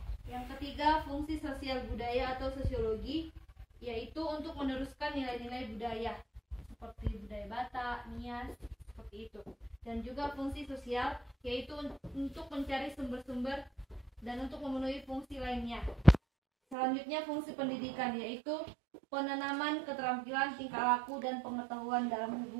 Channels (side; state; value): left; drops out; at 16.8 s